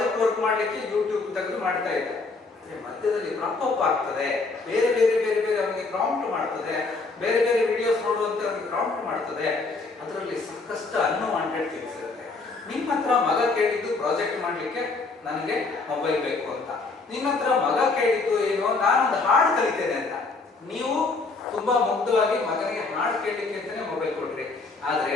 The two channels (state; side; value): quieter; right; 3.8 dB